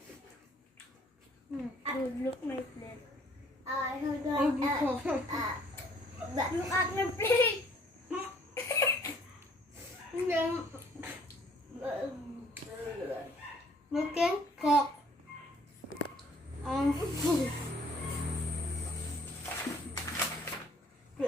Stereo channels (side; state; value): both; normal; correlation 0.60